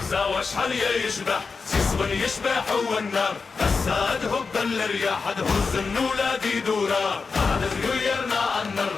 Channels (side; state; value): right; quieter; 4.7 dB